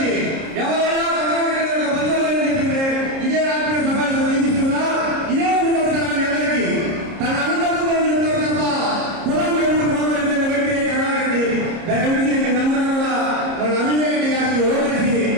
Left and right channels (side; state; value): left; late; 30 ms